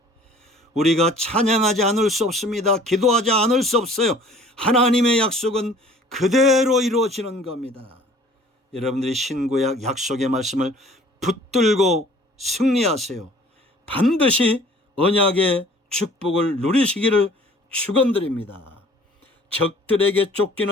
우리가 찬양하지 않을 수 없습니다. 기도하지 않을 수 없어요. 하나님의 약속은 그대로 이루어지는 겁니다. 여러분들이 신구약 약속의 말씀을 붙들고 승리하세요. 반드시 언약의 축복을 누리시기를 축원드립니다. 적들에게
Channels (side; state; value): both; normal; correlation 0.51